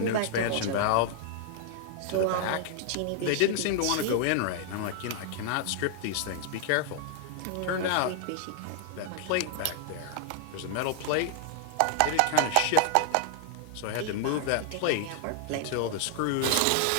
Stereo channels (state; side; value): different; both; correlation 0.00